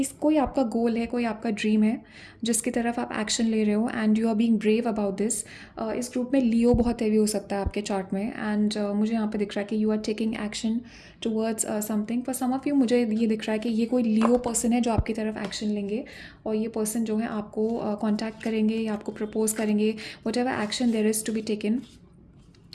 कोई आपका गोल है, कोई आपका ड्रीम है जिसकी तरफ आप एक्शन ले रहे हो and you are being brave about this. इस ग्रुप में लियो बहुत हैवी हो सकता है आपके चार्ट में एंड मुझे यहाँ पे दिख रहा है कि you are taking action towards something. For some of you मुझे ये दिख रहा है कि ये कोई लियो पर्सन है जो आपकी तरफ एक्शन लेंगे और ये पर्सन जो है आपको कॉन्टैक्ट करेंगे या आपको प्रपोज करेंगे। Whatever action there is to be taken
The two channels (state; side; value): identical; both; correlation 1.00